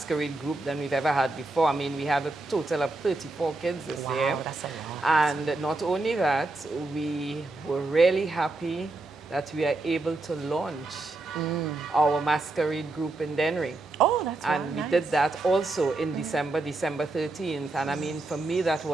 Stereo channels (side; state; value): left; quieter; 3.1 dB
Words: group than we've ever had before. I mean, we had a total of 34 kids this year. Wow, that's a lot. And not only that, we were really happy that we are able to launch our masquerade group in Dennery. Oh, that's And really we nice. did that also in December 13th. And I mean, for me, that